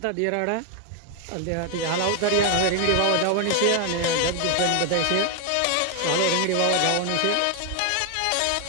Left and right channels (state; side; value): different; both; correlation 0.01